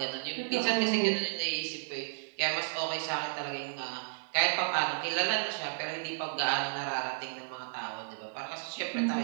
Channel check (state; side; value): silent; left; digital silence